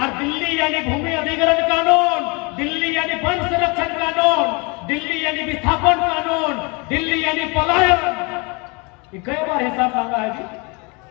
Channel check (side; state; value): right; quieter; 29.7 dB